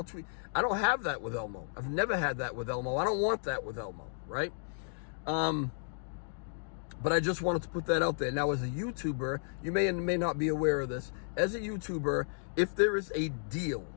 tweet. I don't have that with Elmo. I've never had that with Elmo. I don't want that with Elmo, right? But I just wanted to put that out there. Now, as a YouTuber, you may and may not be aware of this. As a YouTuber, if there is a deal,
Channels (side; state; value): right; silent; digital silence